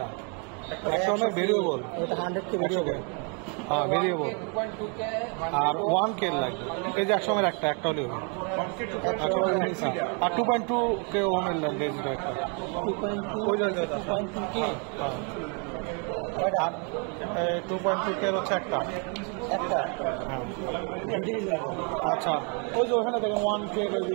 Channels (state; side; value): quieter; left; 36.3 dB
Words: 100 ওমের ভেরিয়েবল, 100K ভেরিয়েবল, হ্যাঁ ভেরিয়েবল। আর 1K লাগবে। এই যে 100 ওমের একটা হলেও, আর 2.2K ওমের লাগবে একটা। 2.2K হচ্ছে একটা। আচ্ছা, ওই যে ওখানে দেখেন 1K